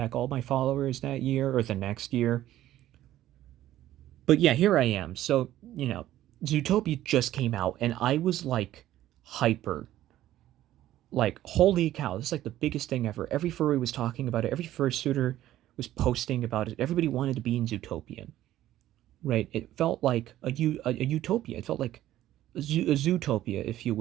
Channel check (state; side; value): quieter; left; 13.6 dB